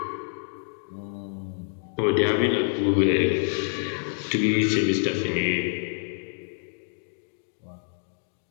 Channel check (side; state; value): right; silent; 60 dB below the other